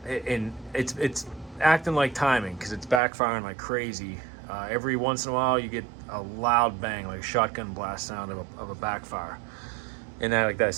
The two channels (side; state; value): left; drops out; at 3.0 s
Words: and it's acting like timing, because it's backfiring like crazy. Every once in a while you get a loud bang, like a shotgun blast sound of a backfire. And that, like I